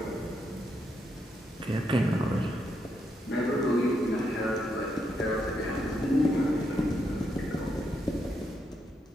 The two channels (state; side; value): normal; both; correlation 0.79